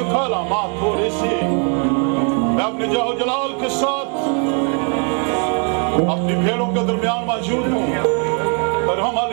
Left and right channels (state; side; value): quieter; left; 39.5 dB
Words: लामा थोड़े से। मैं अपने जाहो जलाल के साथ अपनी भेड़ों के दरमियान मौजूद हूँ। और हम